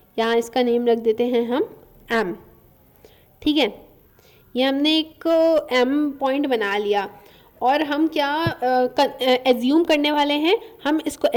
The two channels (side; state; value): both; identical; correlation 1.00